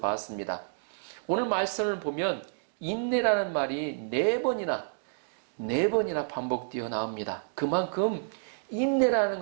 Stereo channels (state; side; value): silent; left; digital silence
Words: 오늘 말씀을 보면 인내라는 말이 4번이나 반복되어 나옵니다. 그만큼 인내라는